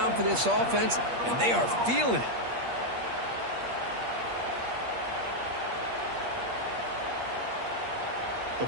for this offense, and they are feeling it. The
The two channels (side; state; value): left; late; 8.5 ms